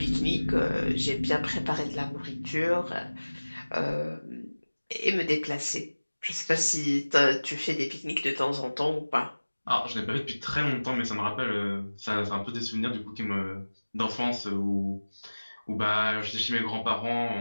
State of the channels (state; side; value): inverted; both; correlation -1.00